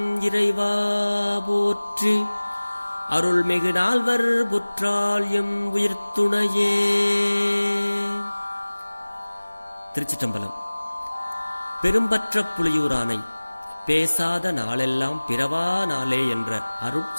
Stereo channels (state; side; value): inverted; both; correlation -1.00